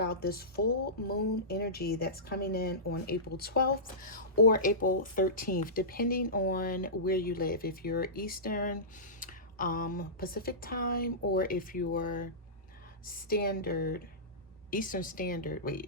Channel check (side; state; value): both; normal; correlation -0.19